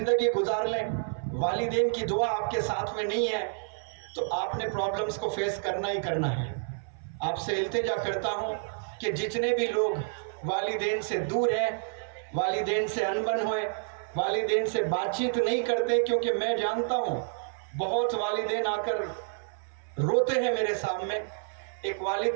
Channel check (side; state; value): left; silent; 58 dB below the other